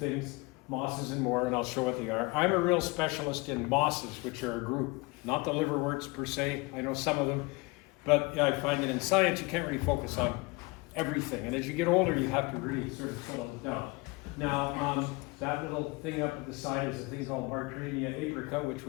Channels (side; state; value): right; quieter; 25.7 dB